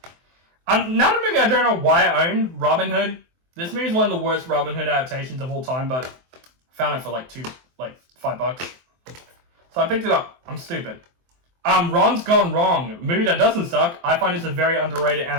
Another movie I don't know why I own, Robin Hood. This movie is one of the worst Robin Hood adaptations of all time, but I found it for like $5. So I picked it up. I'm stupid. Ron's Gone Wrong, movie that doesn't suck. I find it's a very underrated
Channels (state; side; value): late; left; 23 ms